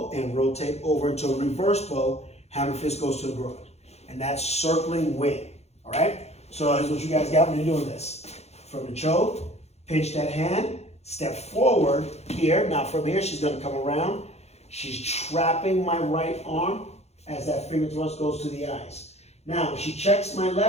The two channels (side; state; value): right; late; 0.31 ms